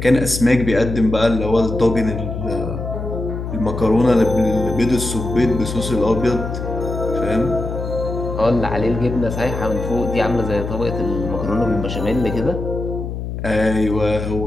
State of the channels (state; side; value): noise; left; hum, 6 dB below the sound